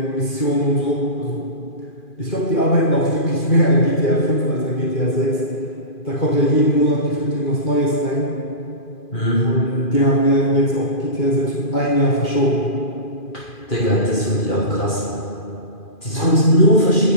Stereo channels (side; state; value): right; late; 2.4 ms